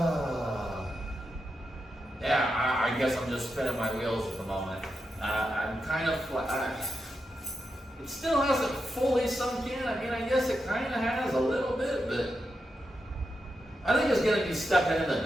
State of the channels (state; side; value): normal; both; correlation 0.87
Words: yeah, I guess I'm just spinning my wheels at the moment. I'm kind of it still hasn't fully sunk in. I mean, I guess it kind of has a little bit, but I think it's gonna be stepping in the